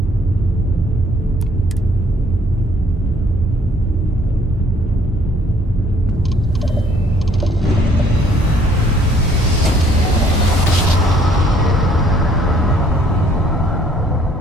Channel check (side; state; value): both; normal; correlation 0.62